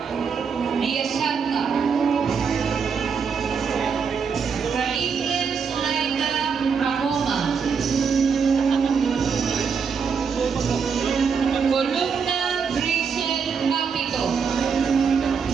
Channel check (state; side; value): quieter; left; 6.0 dB